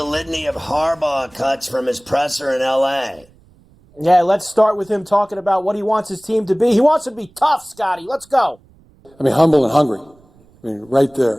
litany of Harbaugh cuts from his presser in L.A. Yeah, let's start with him talking about what he wants his team to be. He wants to be tough, Scotty. Let's go. I mean, humble and hungry. I mean, right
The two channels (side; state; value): right; noise; rumble, 30 dB below the sound